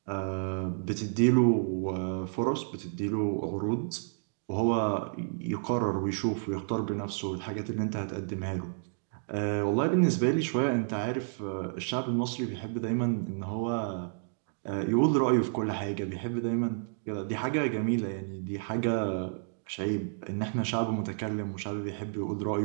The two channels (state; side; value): silent; left; digital silence